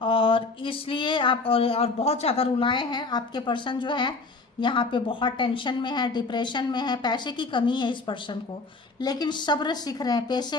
और इसलिए आप और बहुत ज़्यादा रुलाए हैं। आपके पर्सन जो है यहाँ पे बहुत टेंशन में है, डिप्रेशन में है, पैसे की कमी है इस पर्सन को, लेकिन सब्र सीख रहे हैं,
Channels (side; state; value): right; quieter; 3.8 dB